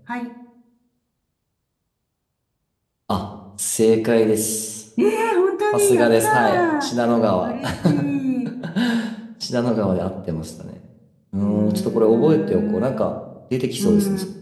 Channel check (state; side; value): identical; both; correlation 1.00